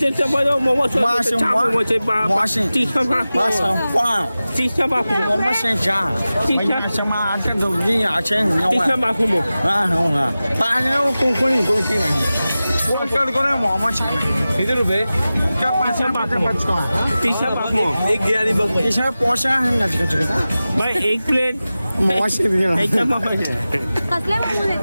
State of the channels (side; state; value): both; inverted; correlation -0.96